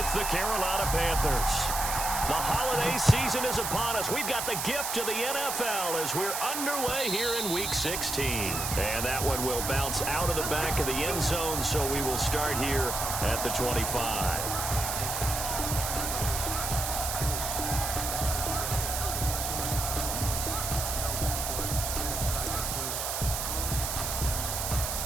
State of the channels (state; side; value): noise; right; hiss, 2 dB below the sound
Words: the Carolina Panthers. The holiday season is upon us. We've got the gift of the NFL as we're underway here in Week 16. And that one will bounce out of the back of the end zone, so we will start here at the 25.